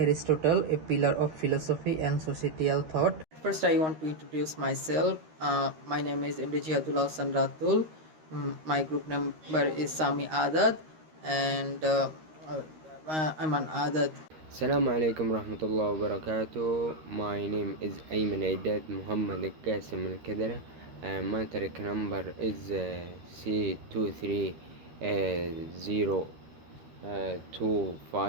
a pillar of philosophy and societal thought. First I want to introduce myself. My name is MD Jihadullah Hassan Ratul. My group number is Sami Adad and I'm an Adad. Assalamu alaikum warahmatullahi wabarakatuh. My name is Ayman Aidad Muhammad Qasim Al Kadara. My track number is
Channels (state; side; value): late; left; 13 ms